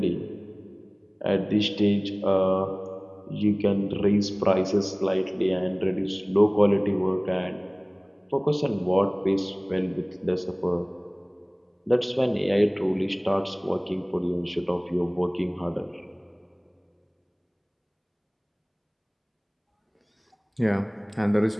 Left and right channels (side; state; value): both; identical; correlation 1.00